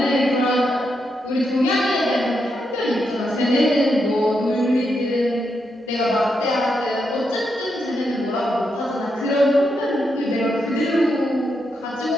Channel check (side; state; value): both; normal; correlation 0.82